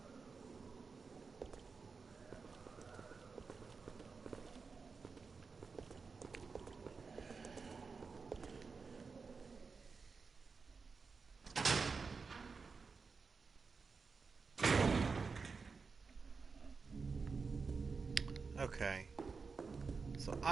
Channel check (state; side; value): quieter; left; 4.8 dB